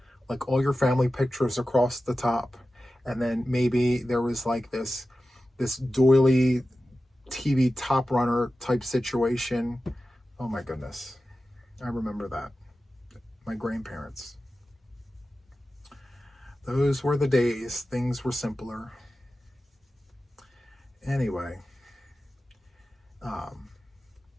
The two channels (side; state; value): both; normal; correlation 0.94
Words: like all your family pictures across the top. And then maybe there was like this doily TV top runner type situation. Oh my goodness. I remember that. My grandparents. Those were the days. Things were simpler. Anyway,